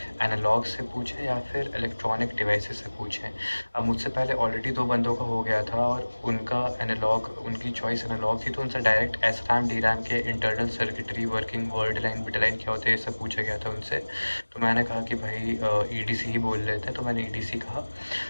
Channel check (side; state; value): both; inverted; correlation -1.00